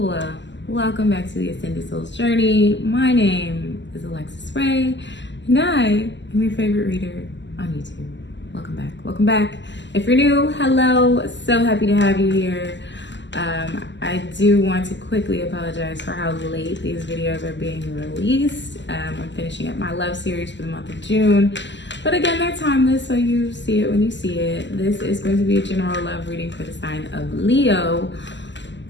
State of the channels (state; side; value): late; right; 0.53 ms